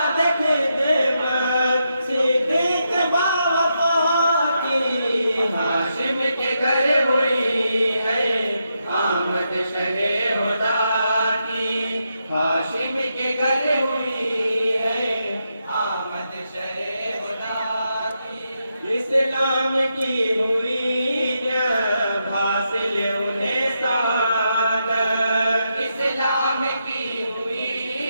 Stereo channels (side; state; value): both; inverted; correlation -0.83